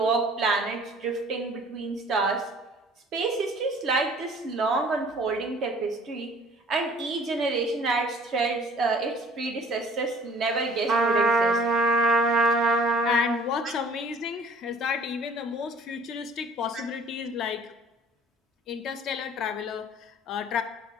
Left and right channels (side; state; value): both; normal; correlation 0.51